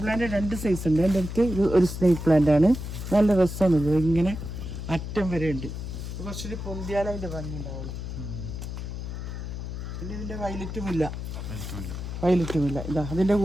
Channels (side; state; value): left; noise; hum, 7 dB below the sound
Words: പ്ലാന്റ് 2 സൈസ് ഉണ്ട്. എൻ്റെ അടുത്ത് ഇത് ഒരു സ്നേക്ക് പ്ലാന്റ് ആണ്. നല്ല രസമാണ്. ഇത് ഇങ്ങനെ അറ്റം വരെ ഉണ്ട്. കുറച്ചൊരു പൊന്തിയാലും അതിൻ്റെ ഭംഗി ഉണ്ടാവുള്ളൂ. പിന്നെ ഇതിൻ്റെ വയലറ്റുമില്ല. ഇതാ അതിൻ്റെ